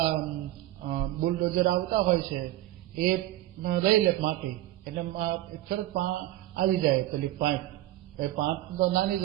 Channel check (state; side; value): quieter; left; 15.1 dB